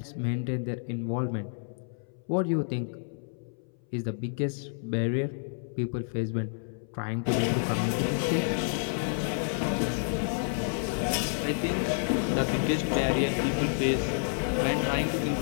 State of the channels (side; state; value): right; silent; 58 dB below the other